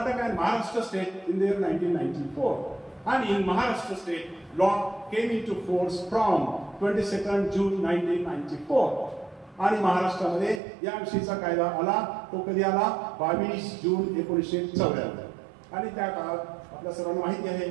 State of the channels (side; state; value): left; drops out; at 10.6 s